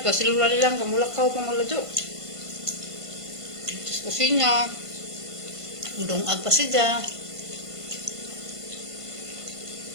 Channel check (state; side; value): late; left; 1.5 ms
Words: pa, silula lilang kamulakaw pa maladyo. Tapos kusina. Dungag pa siya.